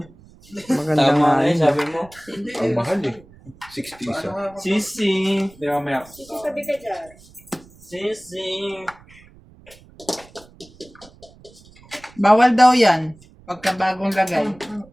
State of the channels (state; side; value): noise; right; rumble, 25 dB below the sound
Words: Maganda Tama nga na eh, yun. sabi mo. Ang mahal eh. 60 Paano isa. nga ako? Sisi. Hindi, mamaya. Sabi ka dyan. Sisi. Bawal daw yan. Pagka bagong lagay.